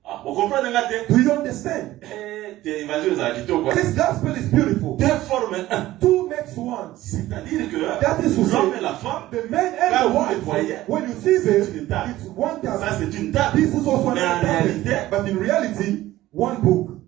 Ah, vous comprenez maintenant? Do you understand? L'évangile a dit quoi? This gospel is beautiful. Deux forment un. Two makes one. C'est-à-dire que That is to say, l'homme et la femme, the man and Quand the vous wife, les voyez, when you see them, c'est une table. it's one ça table. c'est une table. This is also Mais en another réalité, table. But in reality, one book.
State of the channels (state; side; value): quieter; left; 15.8 dB